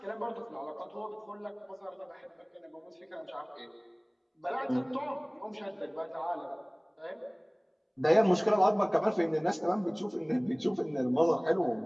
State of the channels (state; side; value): identical; both; correlation 1.00